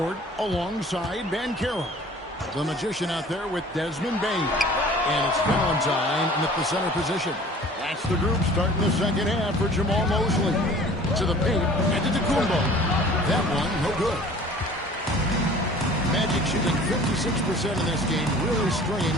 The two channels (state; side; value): normal; both; correlation 0.47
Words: alongside Banchero. The Magician out there with Desmond Bane. And it's Valentine in the center position. That's the group starting the second half for Jamal Mosley. To the paint, and to Antetokounmpo. That one, no good. Magic shooting 56% in this game, really stringing